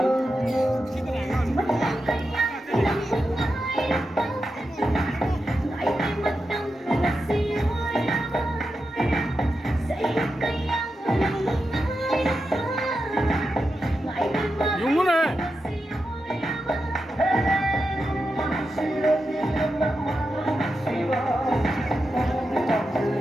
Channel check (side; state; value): both; normal; correlation 0.89